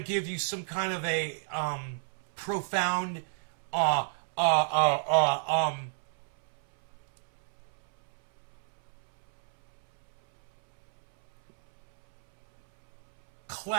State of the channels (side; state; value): left; silent; 57 dB below the other